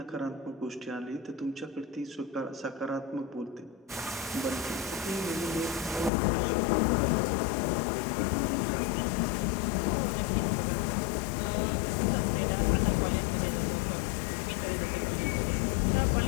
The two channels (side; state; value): right; drops out; at 6.1 s